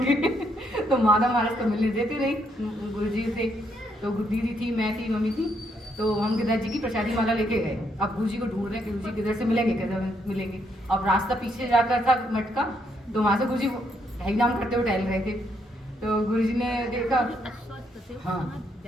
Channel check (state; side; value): normal; both; correlation 0.74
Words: तो माधव महाराज तो मिलने देते रही गुरुजी से। तो दीदी थी, मैं थी, मम्मी थी, तो हम गिरराज जी की प्रसादी माला लेके गए। अब गुरुजी को ढूंढ रहे हैं कि गुरुजी किधर से मिलेंगे किधर मिलेंगे। अब रास्ता पीछे जाकर था मठ का, तो वहाँ से गुरुजी ढाई नाम करते हुए टहल रहे थे। तो गुरुजी ने देखा, हाँ